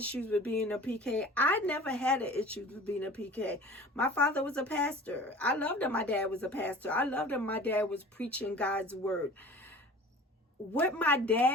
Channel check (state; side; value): normal; both; correlation 0.43